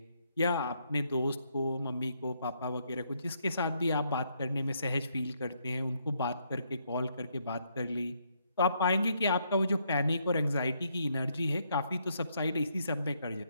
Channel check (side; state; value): both; inverted; correlation -0.74